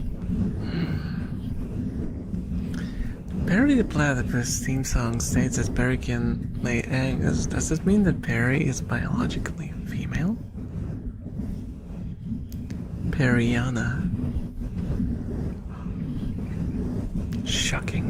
Perry the Platypus theme song states that Perry can lay eggs. Does this mean that Perry is biologically female? Periana.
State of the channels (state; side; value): identical; both; correlation 1.00